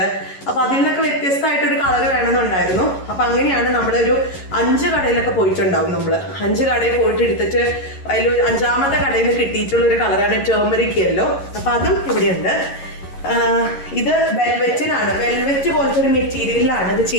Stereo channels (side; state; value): right; late; 11 ms